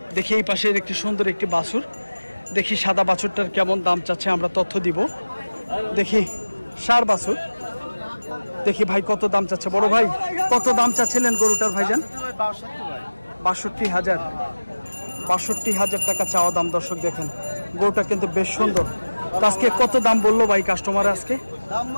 দেখি এই পাশের একটি সুন্দর একটি বাছুর, দেখি সাদা বাছুরটার কেমন দাম চাচ্ছে আমরা তথ্য দিব। দেখি ষাঁড় বাছুর, দেখি ভাই কত দাম চাচ্ছে। বড় ভাই, কত দাম চাচ্ছিলেন গরুটার ভাইজান? 62,000, 62,000 টাকা চাওয়া দাম। দর্শক দেখেন, গরুটা কিন্তু বেশ সুন্দর। আজকে কত দাম বললো ভাই কাস্টমার? আজকে দাম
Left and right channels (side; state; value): both; inverted; correlation -1.00